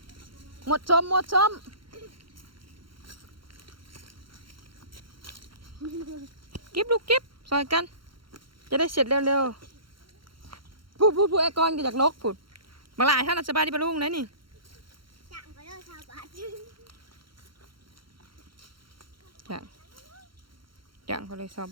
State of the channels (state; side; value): late; left; 0.73 ms